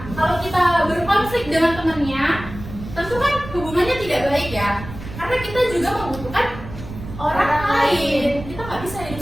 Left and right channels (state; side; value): noise; right; rumble, 12 dB below the sound